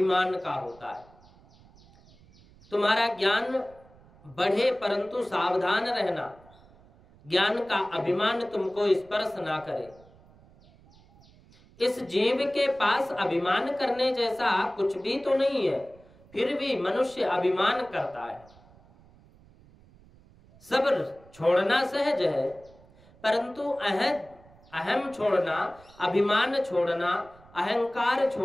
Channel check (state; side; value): noise; right; rumble, 26 dB below the sound